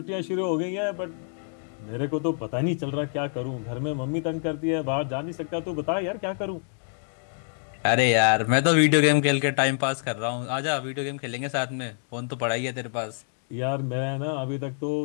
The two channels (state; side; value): silent; right; 60 dB below the other